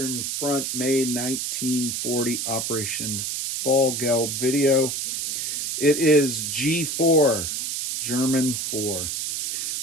Front, May 1940 Operation Fall Gelb video. It is G4, German 4.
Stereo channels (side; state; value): right; noise; hiss, 2 dB below the sound